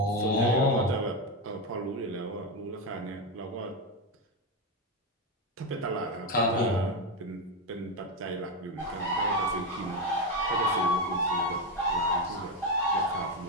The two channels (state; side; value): normal; both; correlation 0.10